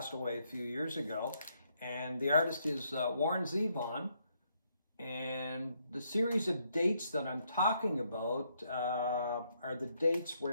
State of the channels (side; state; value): both; inverted; correlation -0.75